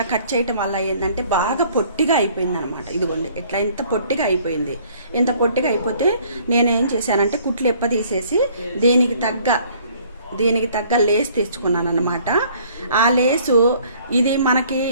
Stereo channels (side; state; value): both; inverted; correlation -0.58